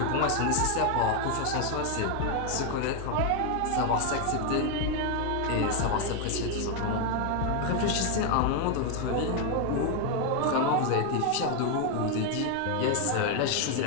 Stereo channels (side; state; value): both; different; correlation 0.01